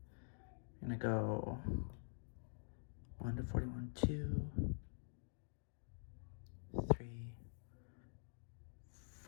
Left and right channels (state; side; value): silent; right; digital silence